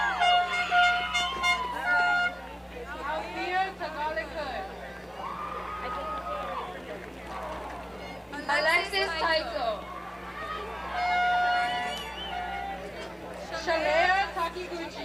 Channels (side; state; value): both; identical; correlation 1.00